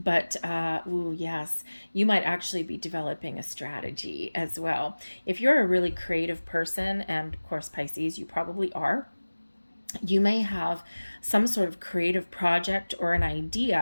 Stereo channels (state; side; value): inverted; both; correlation -1.00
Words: Yes, you might actually be developing a strategy as well. If you're a really creative person, and of course, Pisces, you probably are, you may have some sort of creative project or an